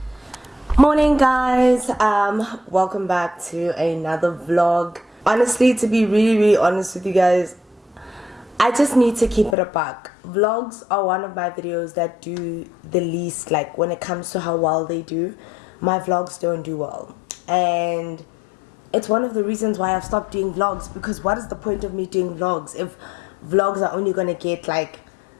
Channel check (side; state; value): right; drops out; at 9.6 s